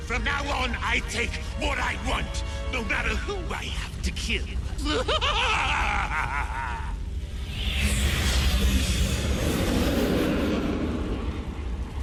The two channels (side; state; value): both; identical; correlation 1.00